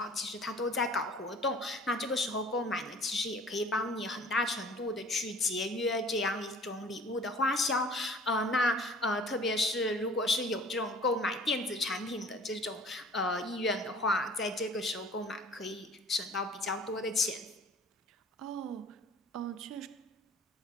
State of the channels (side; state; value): both; normal; correlation 0.48